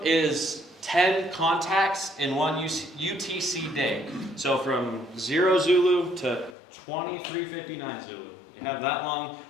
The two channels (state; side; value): drops out; right; at 6.6 s